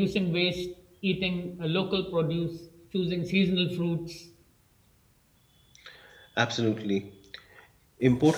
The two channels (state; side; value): identical; both; correlation 1.00